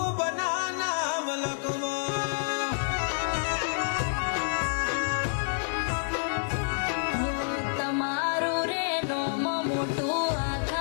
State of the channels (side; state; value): right; silent; 59 dB below the other